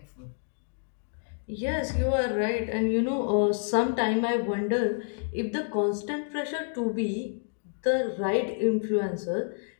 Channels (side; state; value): right; silent; digital silence